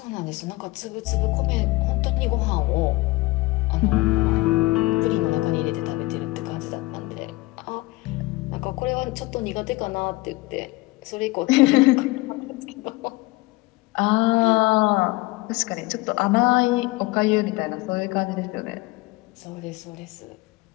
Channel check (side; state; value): right; quieter; 21.1 dB